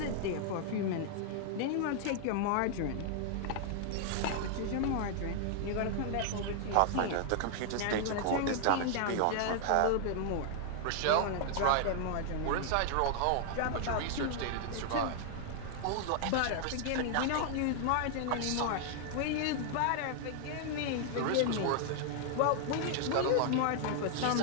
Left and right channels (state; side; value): different; both; correlation 0.00